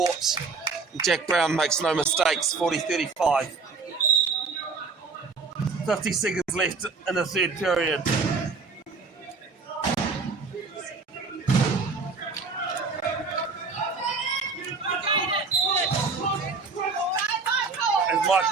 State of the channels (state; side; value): quieter; left; 4.4 dB